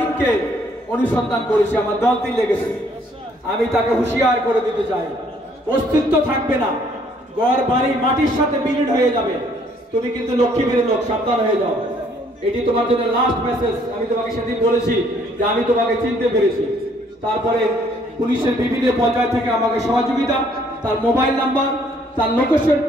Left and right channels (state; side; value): normal; both; correlation 0.64